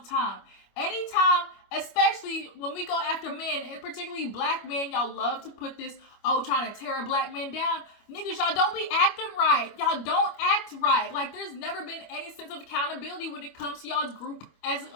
time. Anytime, especially when we go after men, and particularly black men, y'all love to put this, trying to tear a black man down. Niggas, y'all don't be acting right. Y'all don't act right. Like, there's never been any sense of accountability when it comes to y'all's group as a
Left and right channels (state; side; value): late; right; 25 ms